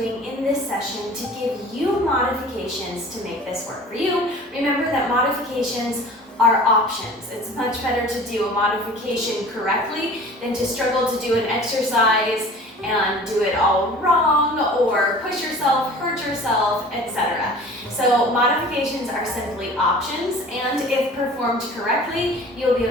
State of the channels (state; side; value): normal; both; correlation 0.43